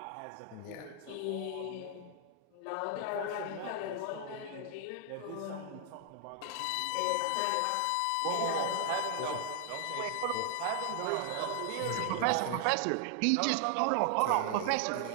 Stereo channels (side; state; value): both; different; correlation 0.00